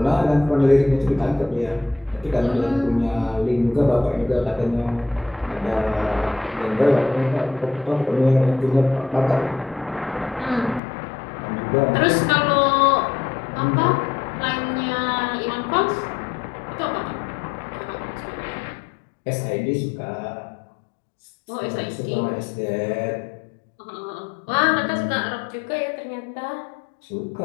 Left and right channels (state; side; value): drops out; right; at 10.8 s